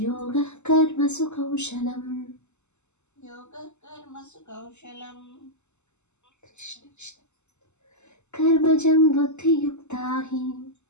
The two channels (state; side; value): late; right; 0.83 ms